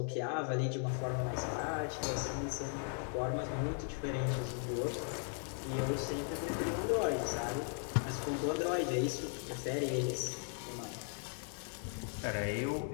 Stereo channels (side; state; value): right; silent; 53 dB below the other